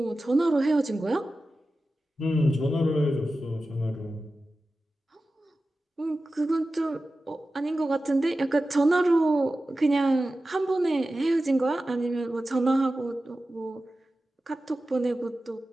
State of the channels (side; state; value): both; normal; correlation 0.94